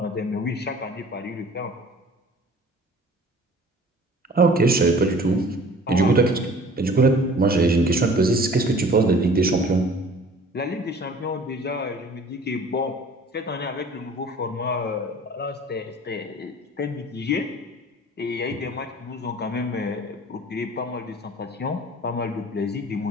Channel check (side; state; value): both; normal; correlation 0.48